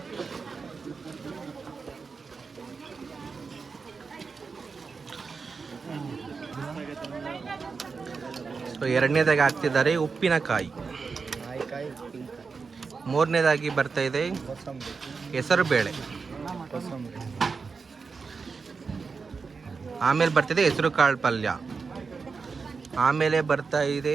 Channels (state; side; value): quieter; left; 4.9 dB